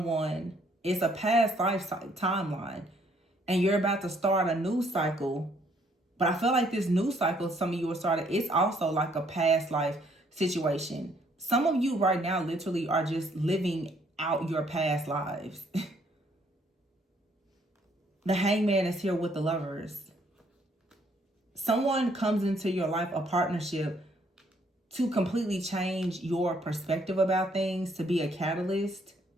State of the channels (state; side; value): normal; both; correlation 0.66